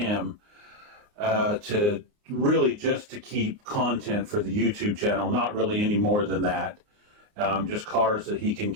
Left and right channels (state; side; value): late; left; 29 ms